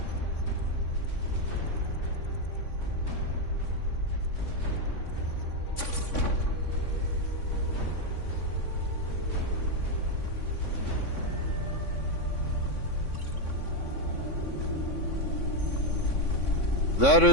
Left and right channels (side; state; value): right; late; 3.6 ms